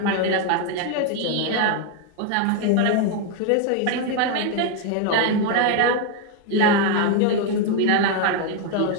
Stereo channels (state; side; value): different; both; correlation 0.01